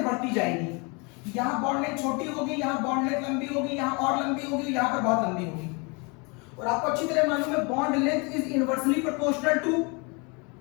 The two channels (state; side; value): quieter; right; 30.7 dB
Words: बढ़ती जाएगी। यहां बॉन्ड लेंथ छोटी होगी, यहां बॉन्ड लेंथ लंबी होगी, यहां और लंबी होगी, यहां पर बहुत लंबी होगी। और आपको अच्छी तरह मालूम है bond length is inversely proportional to